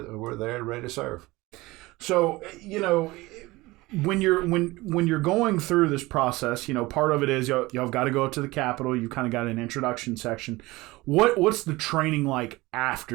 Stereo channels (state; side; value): quieter; left; 20.7 dB